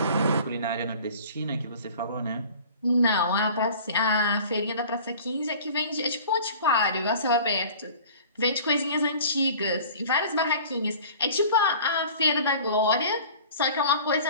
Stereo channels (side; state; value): both; inverted; correlation -0.45